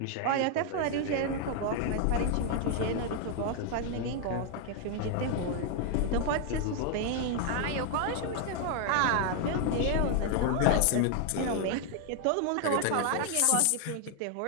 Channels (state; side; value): different; both; correlation 0.00